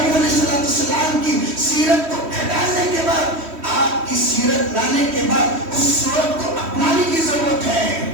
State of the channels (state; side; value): late; left; 3.1 ms